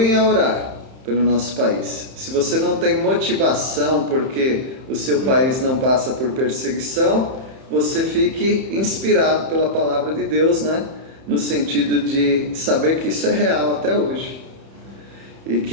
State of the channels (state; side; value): late; left; 31 ms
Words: a orar pelo nosso país. Se você não tem motivação porque o seu país não passa por perseguição, você fique inspirado pela palavra de Deus, né? No sentido de saber que isso é real até hoje. E